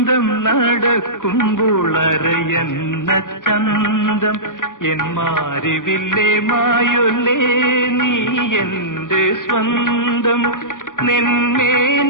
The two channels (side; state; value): right; late; 0.88 ms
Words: നടക്കുമ്പോൾ അരയന്ന ചന്തം എൻ മാരിവില്ലേ മായൊല്ലേ നീ എന്റെ സ്വന്തം